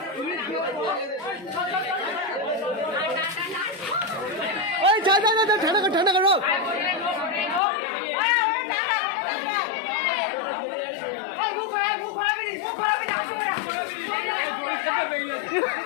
ওই যা যা যা ঠান্ডা করো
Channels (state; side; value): drops out; right; at 7.6 s